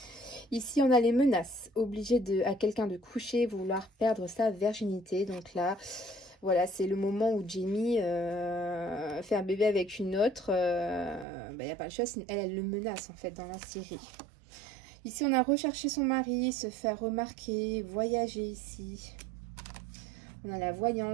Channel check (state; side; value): drops out; left; at 11.2 s